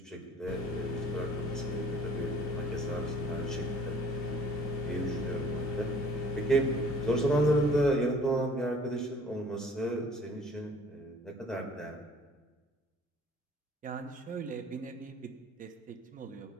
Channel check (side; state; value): both; normal; correlation 0.52